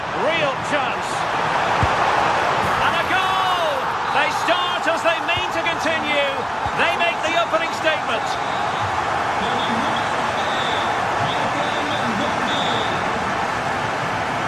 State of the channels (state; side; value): identical; both; correlation 1.00